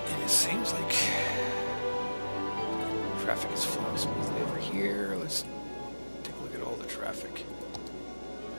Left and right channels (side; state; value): both; inverted; correlation -1.00